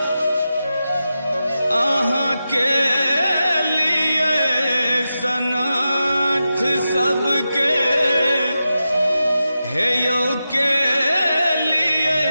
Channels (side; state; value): both; inverted; correlation -0.91